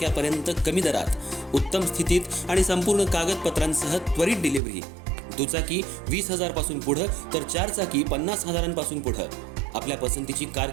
कमी दरात, उत्तम स्थितीत आणि संपूर्ण कागदपत्रांसह त्वरित डिलिव्हरी. दुचाकी 20,000 पासून पुढे तर चारचाकी 50,000 पासून पुढे. आपल्या पसंतीची कार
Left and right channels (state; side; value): drops out; left; at 4.6 s